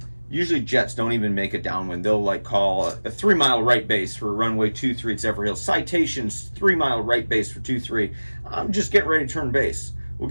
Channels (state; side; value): inverted; both; correlation -1.00